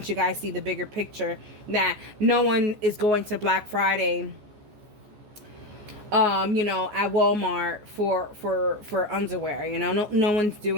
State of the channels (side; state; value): left; late; 14 ms